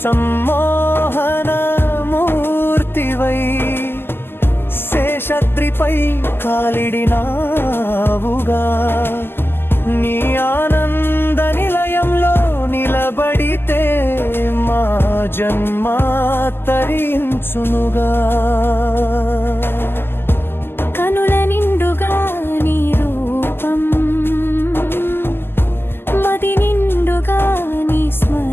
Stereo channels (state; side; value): late; right; 0.10 ms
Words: సమ్మోహన మూర్తివై శేషద్రిపై కాలిడినావుగా నీ ఆనంద నిలయంలో నిలబడితే మా జన్మ తరించునుగా కనుల నిండుగా నీ రూపం మది నిండుగా నీ